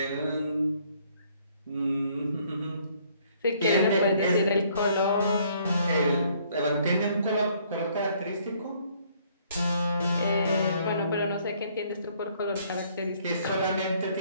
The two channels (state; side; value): inverted; both; correlation -0.64